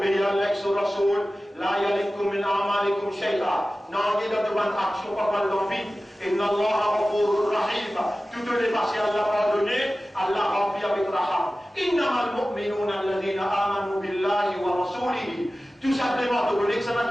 à Allah et son Rasoul, la yalikum min a'malikum shay'a. Non, il y a de bonnes actions pas mal dans vide. Inna Allah ghafurur rahim. Toutes les passées Allah pardonné, Allah remplit avec raham. Innamal mu'minuna alladhina amanu billahi wa rasulihi. Tout simplement, tu connais que ça n'a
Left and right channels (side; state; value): both; normal; correlation 0.96